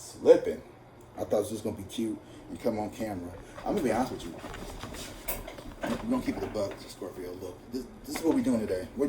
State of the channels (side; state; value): both; identical; correlation 1.00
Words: I thought it was just going to be cute and come on camera. I'm going to be honest with you. We're going to keep it a buck, Scorpio. Look, this is what we're doing today. We're